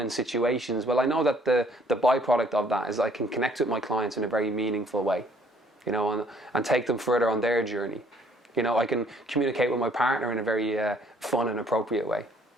situations, well, I know that the byproduct of that is I can connect with my clients in a very meaningful way, you know, and take them further on their journey. You know, I can communicate with my partner in a very fun and appropriate way,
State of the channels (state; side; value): normal; both; correlation 0.62